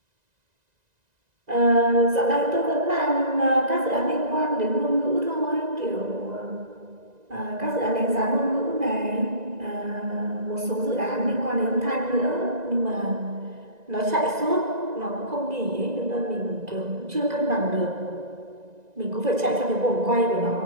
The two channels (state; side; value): late; left; 1.9 ms